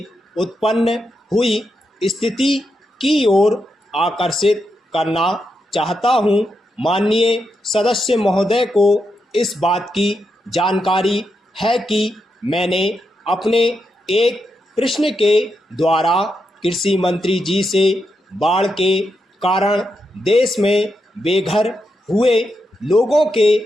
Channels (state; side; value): normal; both; correlation 0.84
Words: उत्पन्न हुई स्थिति की ओर आकर्षित करना चाहता हूं। माननीय सदस्य महोदय को इस बात की जानकारी है कि मैंने अपने एक प्रश्न के द्वारा कृषि मंत्री जी से बाढ़ के कारण देश में बेघर हुए लोगों के